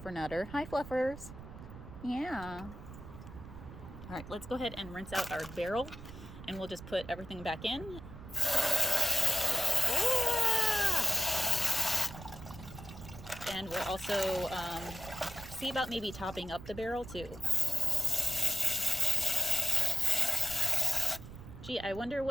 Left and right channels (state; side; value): noise; right; rumble, 14 dB below the sound